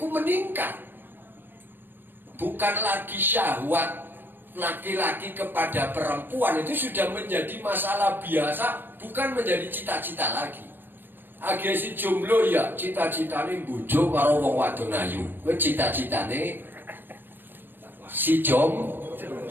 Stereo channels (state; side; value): late; left; 0.096 ms